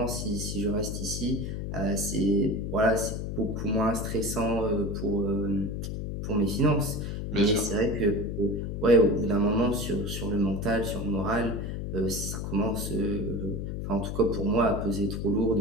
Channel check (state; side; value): noise; left; hum, 4 dB below the sound